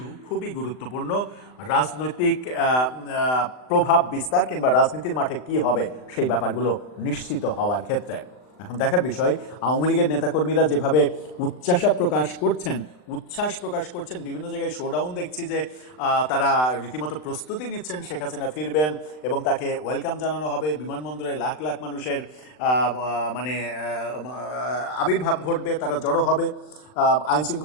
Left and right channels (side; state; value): right; late; 39 ms